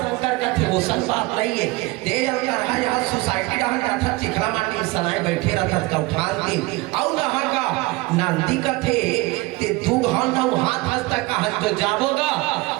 शंकर का थे ओसन बात नहीं है तेज का रहा यहां सोसाइटी रहन था चिखला माटी सनाए बैठे रहता का उठान के और नहा का नंदी का थे ते दू घर न हाथ हंसता कहां तो जाबोगा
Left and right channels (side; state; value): left; quieter; 22.3 dB